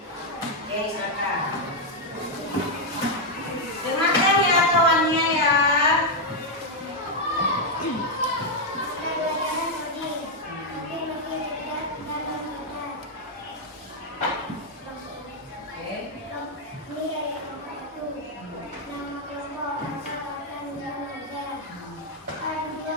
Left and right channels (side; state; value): both; normal; correlation 0.00